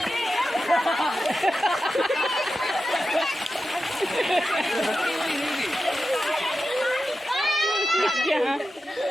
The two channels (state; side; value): normal; both; correlation 0.91